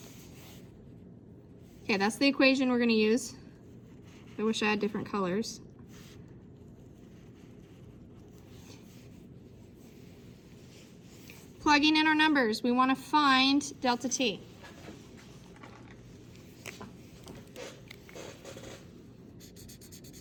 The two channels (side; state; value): both; identical; correlation 1.00